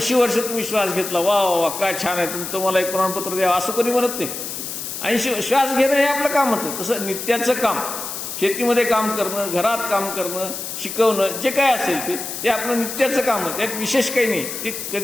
वर्ष तुम्ही श्वास घेतला, वा वा वा काय छान आहे, तुम्हाला एक प्रमाणपत्र द्यावं असं कोणी म्हणत नाही. 80 श्वास घेणं हे आपलं कामच आहे. तसं नित्याचं काम, शेतीमध्ये काम करणं, घरात काम करणं, शिकवणं, जे काय असेल ते आपलं नित्याचं काम आहे. त्यात विशेष काही नाही. ते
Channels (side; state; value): left; noise; hiss, 7 dB below the sound